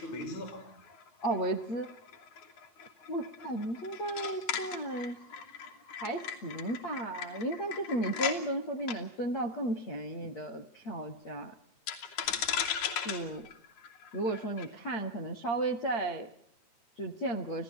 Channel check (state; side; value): late; right; 9.5 ms